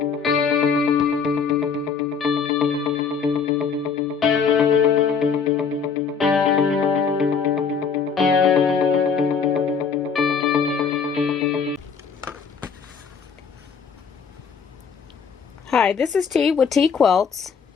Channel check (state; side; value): quieter; right; 6.0 dB